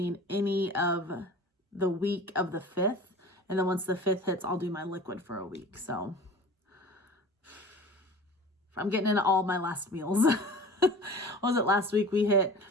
any of the week of the 5th. And then once the 5th hits, I'll do my liquid for a week. So I'm getting into all my last meals. What was it last week?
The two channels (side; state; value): both; normal; correlation 0.40